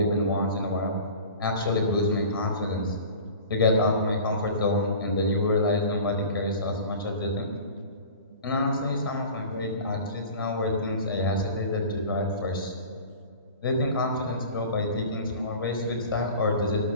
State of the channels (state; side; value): inverted; both; correlation -0.40